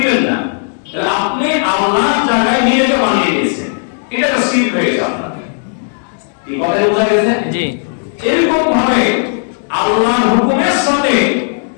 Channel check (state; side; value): silent; right; digital silence